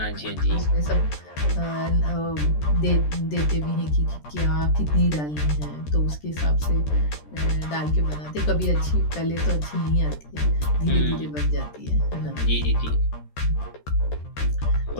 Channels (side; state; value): right; late; 13 ms